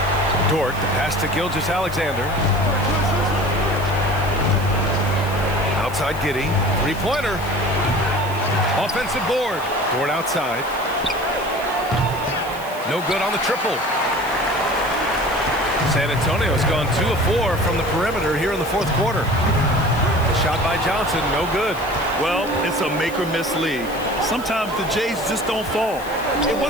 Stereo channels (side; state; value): left; noise; hiss, 18 dB below the sound